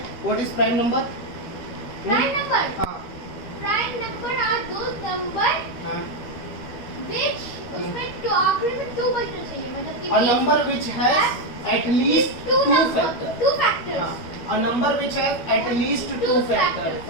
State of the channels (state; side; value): late; right; 13 ms